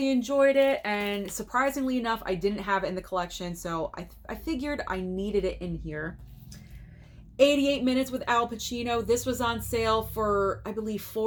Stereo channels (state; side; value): identical; both; correlation 1.00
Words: enjoyed it, and surprisingly enough, I didn't have it in the collection, so I figured I needed it in here. 88 Minutes with Al Pacino. This was on sale for, I believe,